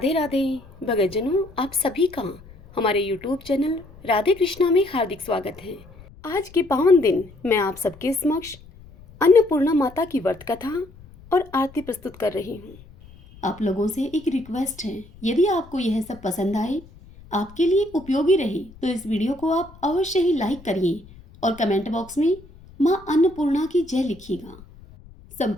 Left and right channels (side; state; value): left; noise; rumble, 22 dB below the sound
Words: राधे। भगतजनों, आप सभी का हमारे YouTube चैनल राधे कृष्णा में हार्दिक स्वागत है। आज के पावन दिन मैं आप सबके समक्ष अन्नपूर्णा माता की व्रत कथा और आरती प्रस्तुत कर रही हूँ। आप लोगों से एक रिक्वेस्ट है, यदि आपको यह सब पसंद आए, आपके लिए उपयोगी रहे, तो इस वीडियो को आप अवश्य ही लाइक करिए और कमेंट बॉक्स में माँ अन्नपूर्णा की जय लिखिएगा।